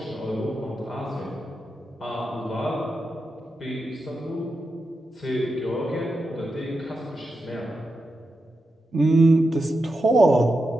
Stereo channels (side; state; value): both; normal; correlation 0.88